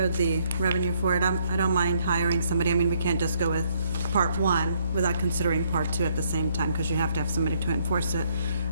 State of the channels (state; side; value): inverted; both; correlation -0.70